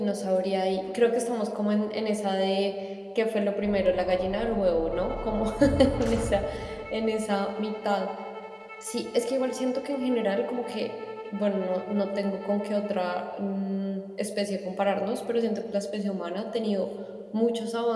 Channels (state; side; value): identical; both; correlation 1.00